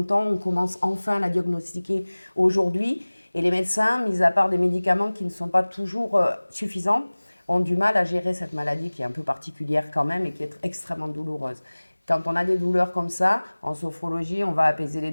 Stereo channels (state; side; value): inverted; both; correlation -1.00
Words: On commence enfin à la diagnostiquer aujourd'hui. Et les médecins, mis à part des médicaments qui ne sont pas toujours suffisants, ont du mal à gérer cette maladie qui est un peu particulière quand même et qui est extrêmement douloureuse. Quand on a des douleurs comme ça, en sophrologie, on va apaiser les